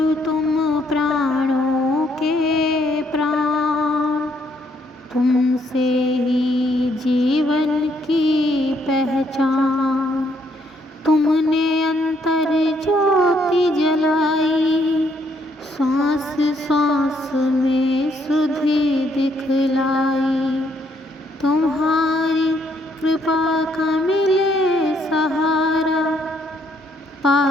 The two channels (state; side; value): normal; both; correlation 0.71